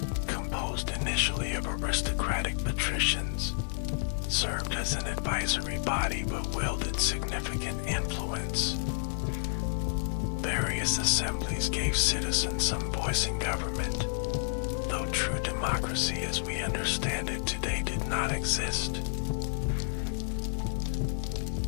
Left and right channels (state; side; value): silent; right; digital silence